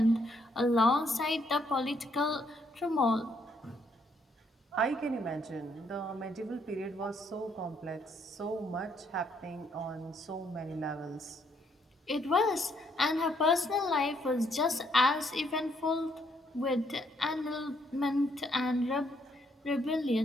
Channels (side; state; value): both; normal; correlation 0.71